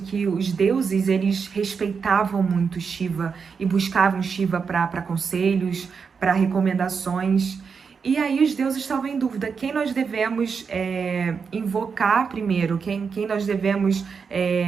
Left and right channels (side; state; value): left; quieter; 5.8 dB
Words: os deuses, eles respeitavam muito Shiva e buscavam Shiva para conselhos, para recomendações. E aí os deuses estavam em dúvida, quem nós devemos invocar primeiro, quem nós devemos